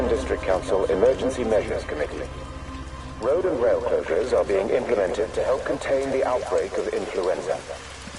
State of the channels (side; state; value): both; identical; correlation 1.00